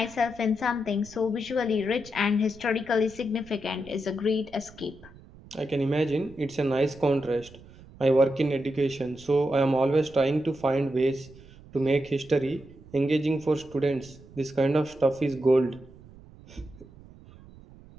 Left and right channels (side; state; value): right; noise; rumble, 21 dB below the sound